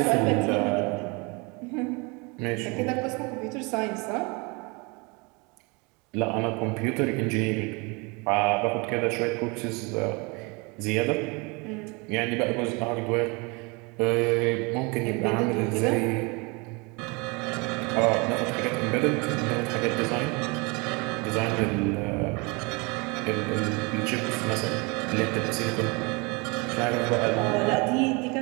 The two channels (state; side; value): quieter; left; 28.7 dB